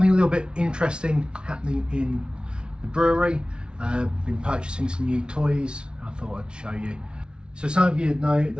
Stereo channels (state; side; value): late; left; 0.056 ms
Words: a little bit interesting happening in the brewery. Been purchasing some new toys. I thought I'd show you. So some of you know